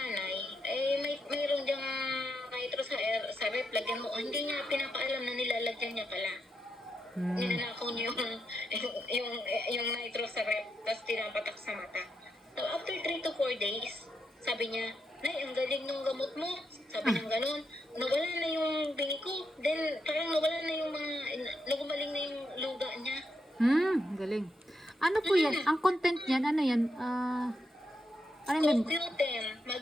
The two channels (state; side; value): normal; both; correlation 0.83